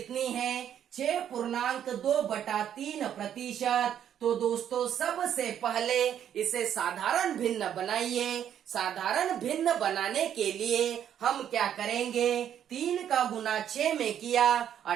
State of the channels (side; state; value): left; quieter; 9.7 dB